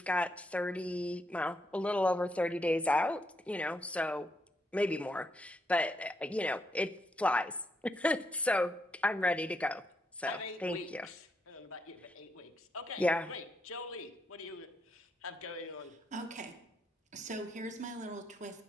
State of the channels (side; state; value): both; normal; correlation 0.78